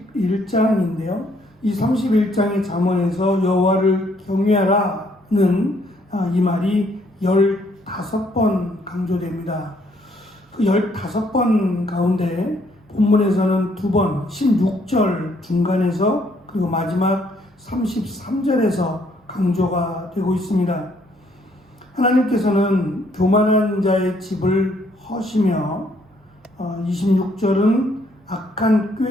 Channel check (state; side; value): normal; both; correlation 0.68